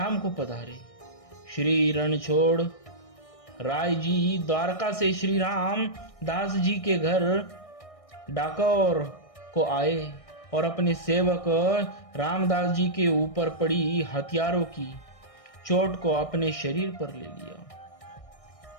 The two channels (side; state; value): right; late; 1.6 ms